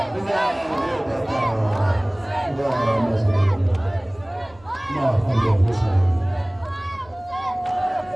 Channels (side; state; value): right; noise; hum, 27 dB below the sound